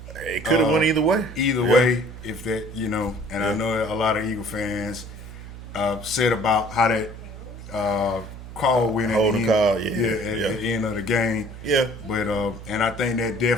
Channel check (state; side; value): noise; right; hum, 13 dB below the sound